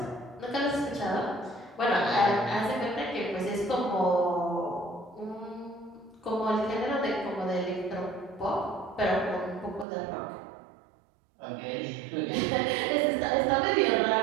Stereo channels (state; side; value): drops out; left; at 9.9 s